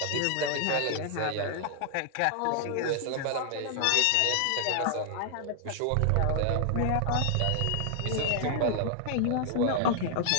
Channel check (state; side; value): different; both; correlation 0.00